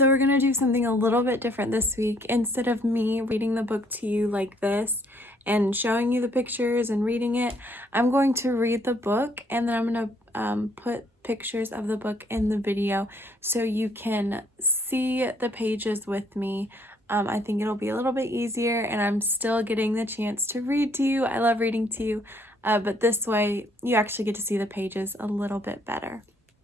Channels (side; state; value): both; normal; correlation 0.65